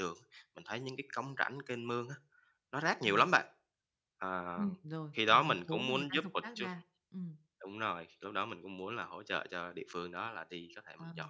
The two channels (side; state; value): both; identical; correlation 1.00